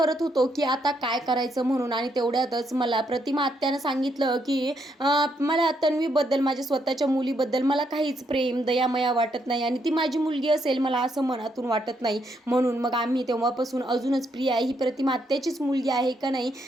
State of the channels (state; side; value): normal; both; correlation 0.76